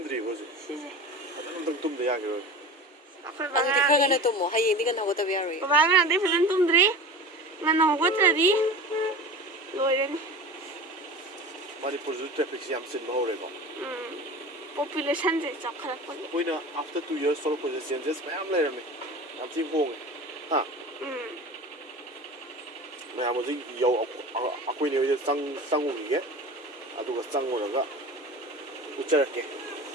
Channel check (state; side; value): normal; both; correlation 0.34